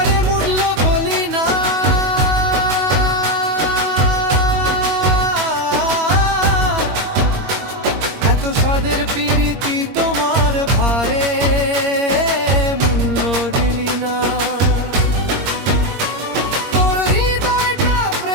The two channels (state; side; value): late; left; 21 ms